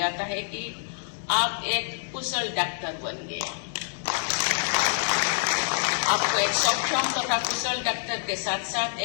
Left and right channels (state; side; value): silent; right; 60 dB below the other